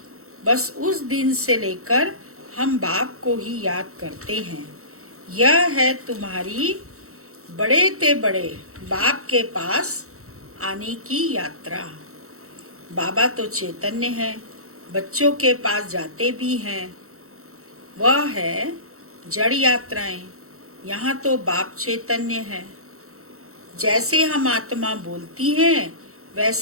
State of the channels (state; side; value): late; left; 0.64 ms